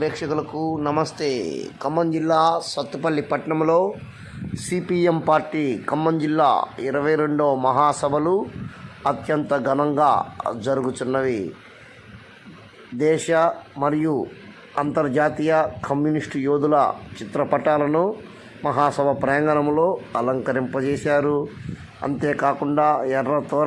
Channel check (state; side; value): identical; both; correlation 1.00